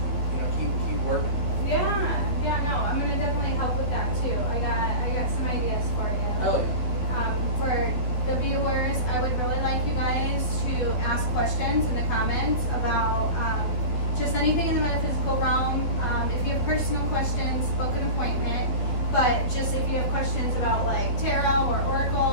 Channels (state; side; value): late; right; 12 ms